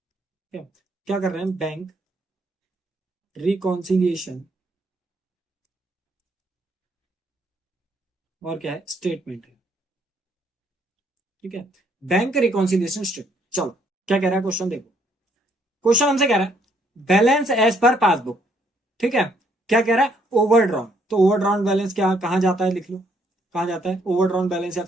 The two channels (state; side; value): normal; both; correlation 0.69